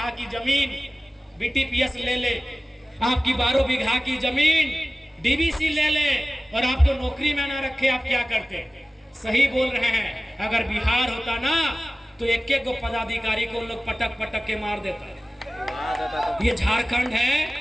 की जमीन बीटीपीएस ले ले, आपकी 12 बीघा की जमीन डीबीसी ले ले और आपको नौकरी में ना रखे, आप क्या करते? सही बोल रहे हैं। अगर बिहार होता ना तो एक एक पदाधिकारी को लोग पटक पटक के मार देता। ये झारखंड है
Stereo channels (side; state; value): both; normal; correlation 0.97